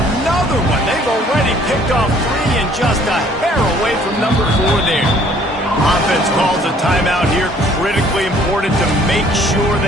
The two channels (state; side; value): normal; both; correlation 0.58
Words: one. They've already picked off 3 and just a hair away from number 4 there. Offense calls a timeout here. Critically important to make sure